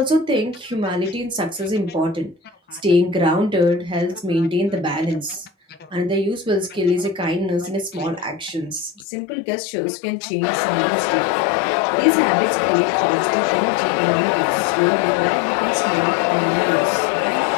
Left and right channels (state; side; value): drops out; right; at 9.1 s